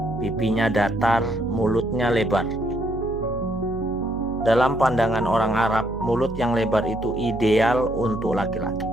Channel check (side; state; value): right; noise; hum, 10 dB below the sound